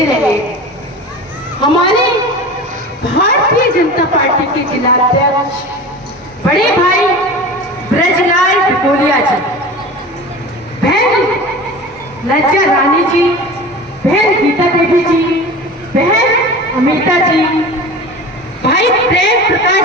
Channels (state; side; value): normal; both; correlation 0.34